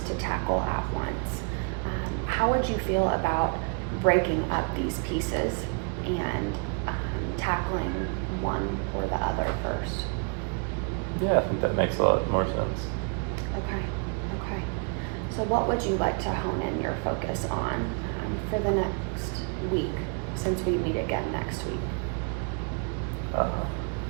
to tackle at once. How would you feel about breaking up these pieces and tackling one or the other first? Yeah, I think that makes a lot more sense. Okay. So what would you like to hone in your focus on for the next week, since we meet again next week?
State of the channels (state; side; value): quieter; left; 36.1 dB